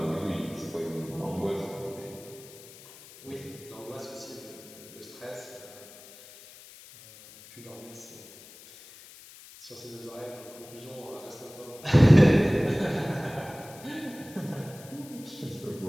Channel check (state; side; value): noise; left; hiss, 19 dB below the sound